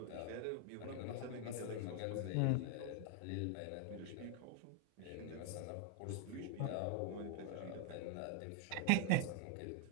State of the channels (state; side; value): different; both; correlation 0.00